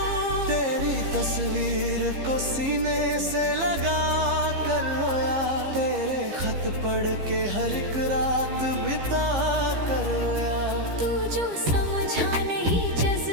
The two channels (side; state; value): left; late; 15 ms